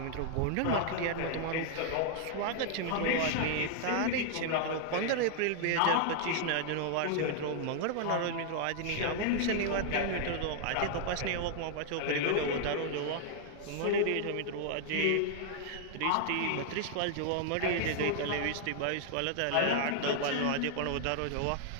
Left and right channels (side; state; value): both; different; correlation 0.00